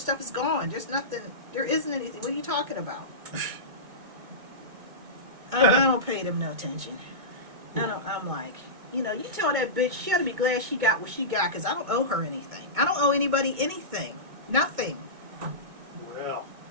is gone. There's nothing. There isn't anything. What are you talking about? I don't pay them no attention. I'm like, you tell that bitch she ought to be glad she got what she got because I don't owe her anything. I don't owe anybody anything. Nothing. Well.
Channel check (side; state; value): left; late; 2.2 ms